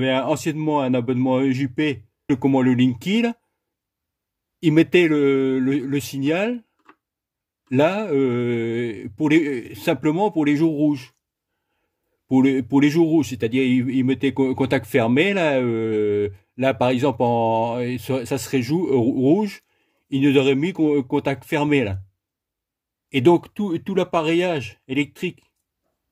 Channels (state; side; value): identical; both; correlation 1.00